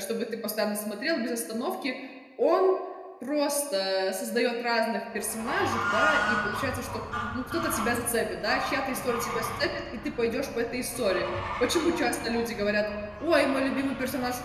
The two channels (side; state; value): both; identical; correlation 1.00